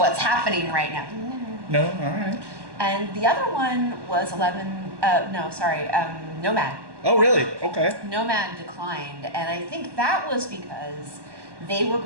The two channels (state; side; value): late; left; 1.1 ms